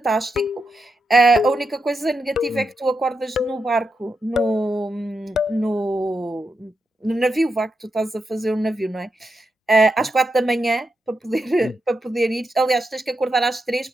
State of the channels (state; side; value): normal; both; correlation 0.86